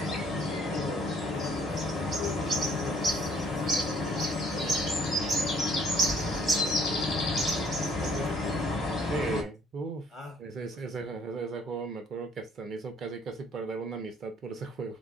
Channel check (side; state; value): both; normal; correlation 0.59